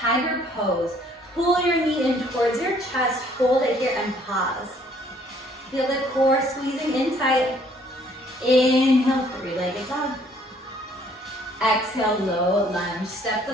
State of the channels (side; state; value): both; normal; correlation 0.61